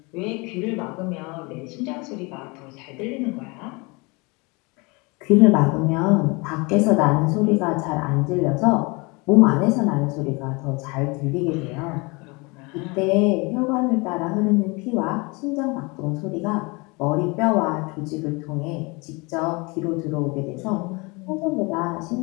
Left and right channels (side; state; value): right; quieter; 27.4 dB